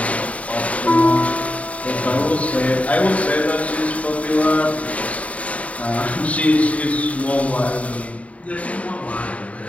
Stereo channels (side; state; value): right; late; 0.067 ms